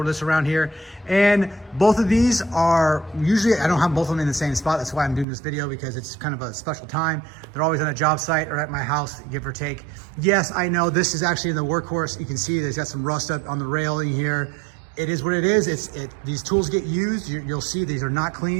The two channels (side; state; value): left; drops out; at 5.2 s